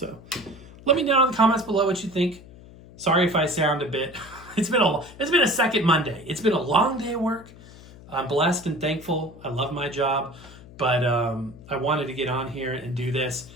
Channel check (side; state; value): left; noise; hum, 20 dB below the sound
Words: let me know in the comments below what you think. Sorry if I sound a bit... It's been a second Monday. It's been a long day of work. I'm blessed and thankful. I love my job, but I wanted to get on here and do this